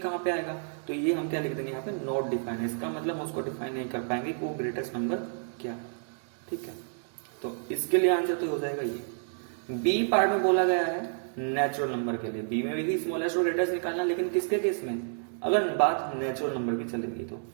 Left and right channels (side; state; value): left; silent; digital silence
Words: पे आएगा। तो ये हम क्या लिख देंगे यहाँ पे, नॉट डिफाइन है। इसका मतलब हम उसको डिफाइन नहीं कर पाएंगे कि वो ग्रेटेस्ट नंबर क्या है। ठीक है, तो इसके लिए आंसर तो हो जाएगा ये। बी पार्ट में बोला गया है नेचुरल नंबर के लिए, बी में भी स्मॉलेस्ट और ग्रेटेस्ट निकालना, लेकिन किसके केस में, अगर बात नेचुरल नंबर की चलेगी तो